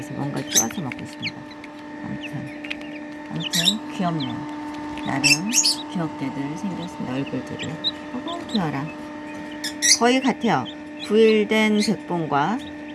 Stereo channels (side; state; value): both; identical; correlation 1.00